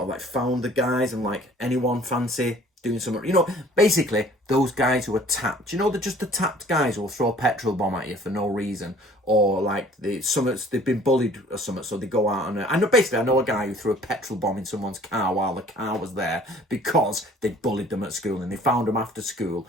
of like found the guys and like, anyone fancy doing something, basically those guys who are tapped, they're just the tapped guys who will throw a petrol bomb at you for no reason, or like they've been bullied or something, so they go out and I know a guy who threw a petrol bomb in someone's car while the car was there because they bullied them at school, and they found them after school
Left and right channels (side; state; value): both; normal; correlation 0.53